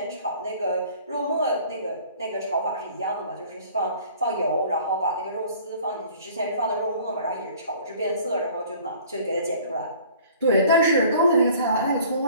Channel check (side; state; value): both; inverted; correlation -0.50